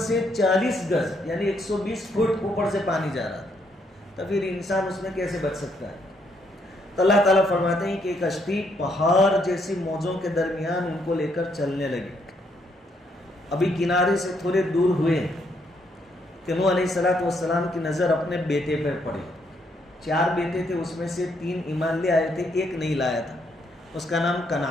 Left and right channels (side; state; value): both; normal; correlation 0.73